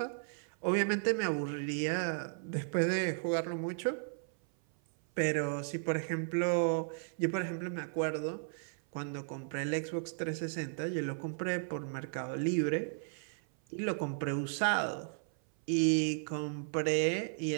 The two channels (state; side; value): silent; left; 55 dB below the other